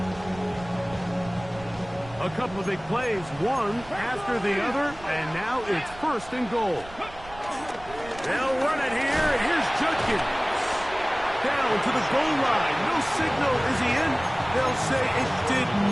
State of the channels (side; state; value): right; noise; rumble, 18 dB below the sound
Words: A couple of big plays, one after the other, and now it's first and goal. They'll run it here, and here's Judkins. Down to the goal line. No signal. Is he in? They'll say it did